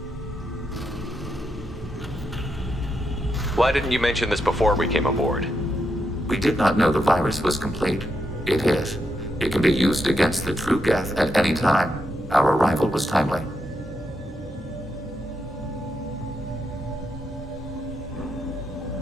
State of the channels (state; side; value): normal; both; correlation 0.82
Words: Why didn't you mention this before we came aboard? We did not know the virus was complete. It is. It can be used against the true geth at any time. Our arrival was timely.